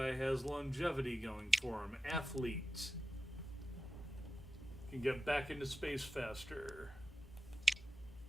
has longevity going for him. Athlete. Can get back into space faster.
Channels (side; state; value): both; normal; correlation 0.92